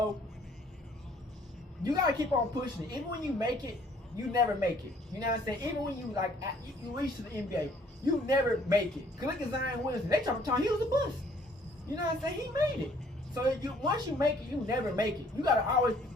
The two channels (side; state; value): both; normal; correlation 0.60